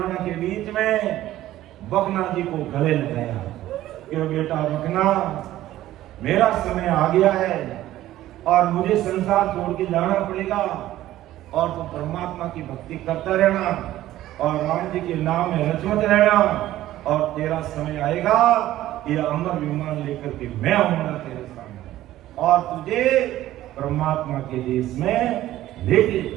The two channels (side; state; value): left; quieter; 14.3 dB